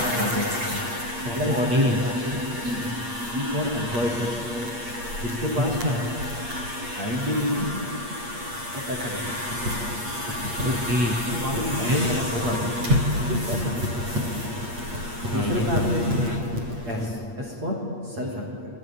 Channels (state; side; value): late; left; 8.5 ms